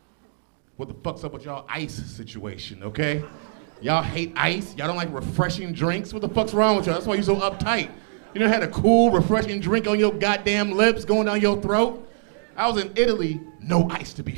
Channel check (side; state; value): left; silent; digital silence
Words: What the fuck's up with y'all ice situation, okay? Y'all hate ice. Y'all don't like refreshing drinks. What the fuck's wrong with y'all? That's why you're so uptight. You know, had a cool, refreshing drink on your goddamn lips going down your throat? I was in Italy, no ice to be